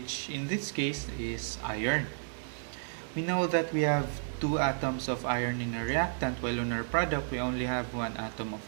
in this case is iron. We know that we have 2 atoms of iron in our reactant, while in our product we only have 1 atom of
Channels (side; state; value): left; silent; digital silence